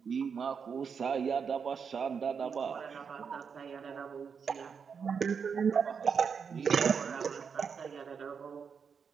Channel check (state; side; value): quieter; left; 6.3 dB